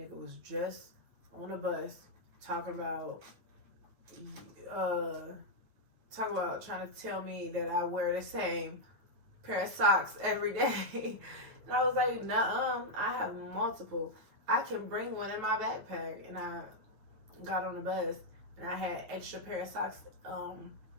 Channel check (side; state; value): left; late; 9.2 ms